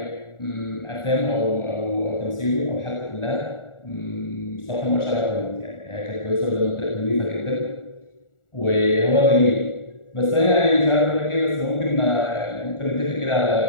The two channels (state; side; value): late; right; 1.4 ms